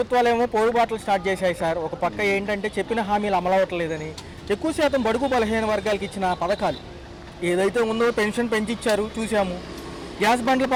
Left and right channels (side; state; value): both; identical; correlation 1.00